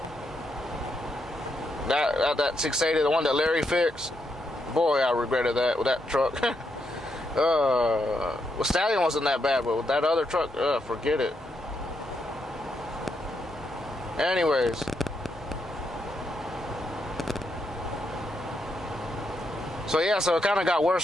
that 680, the one that Larry fixed, boy, I regretted that with that truck. Well, Stallion wasn't that bad, but with that other truck, forget it. Anyways, so yeah, so it kind of got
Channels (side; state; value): both; normal; correlation 0.80